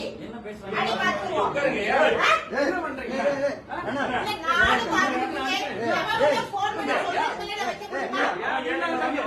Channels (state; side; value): identical; both; correlation 1.00